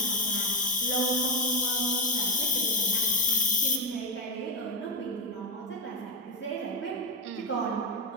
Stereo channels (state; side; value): normal; both; correlation 0.10